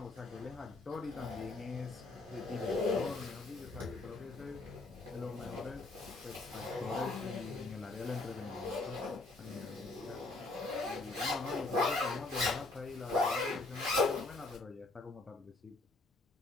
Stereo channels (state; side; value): quieter; right; 3.2 dB